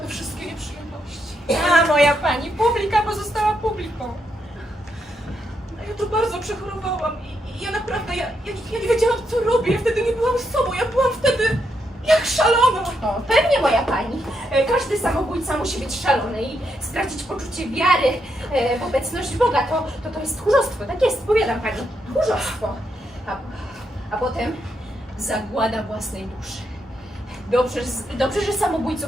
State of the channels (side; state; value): both; normal; correlation 0.80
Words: wszystkie nieprzyjemności. A moja pani, publika pozostała publiką. Ja to bardzo przechorowałam i ja naprawdę, ja nie wiedziałam co robię, ja wtedy nie byłam sobą, ja byłam wtedy jak szalona. O, pewnie moja pani. Każdy samobójca musi być szalony i stracić poczucie wiary w obecność Boga. To jest tchórzostwo, tak jest, powiadam pani. Tchórzostwo. A potem zagłada własnej duszy. Dobrze, że